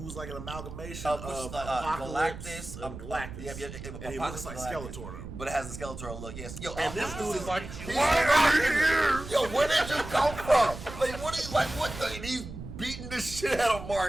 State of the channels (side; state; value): right; noise; rumble, 11 dB below the sound